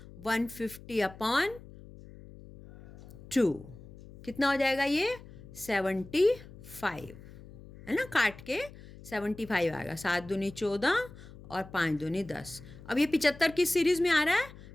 150/2। कितना हो जाएगा ये, 75, है ना, काट के 75 आएगा। 7 दूनी 14 और 5 दूनी 10। अब ये 75 किस सीरीज में आ रहा है,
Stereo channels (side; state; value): left; noise; hum, 18 dB below the sound